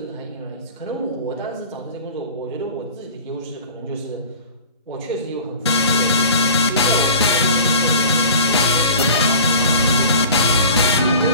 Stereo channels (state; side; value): inverted; both; correlation -0.40